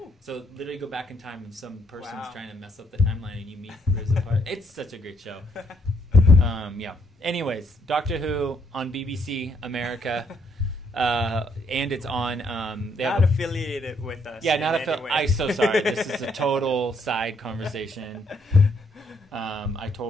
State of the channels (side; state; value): both; normal; correlation 0.71